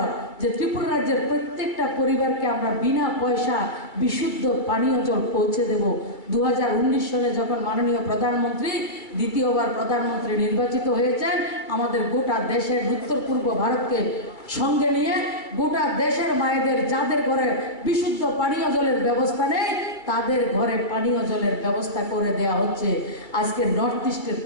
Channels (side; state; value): right; late; 2.2 ms